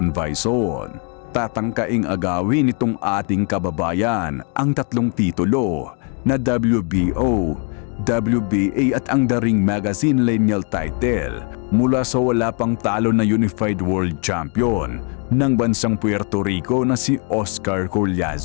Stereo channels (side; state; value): right; quieter; 37.6 dB